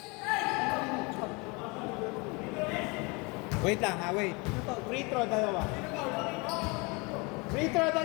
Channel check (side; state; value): right; quieter; 28.3 dB